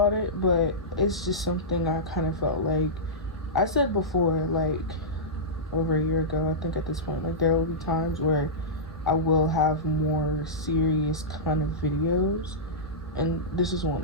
it. But it's just something I kind of felt like I said before, like over a year ago, I think at this point, like there will be times where I will have more serious kind of videos, and this is one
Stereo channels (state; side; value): normal; both; correlation -0.14